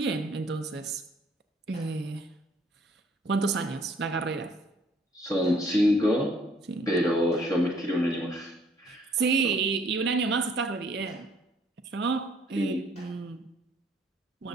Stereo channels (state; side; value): normal; both; correlation 0.62